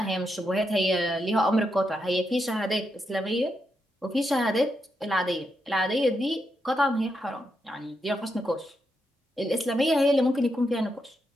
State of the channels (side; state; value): both; normal; correlation 0.83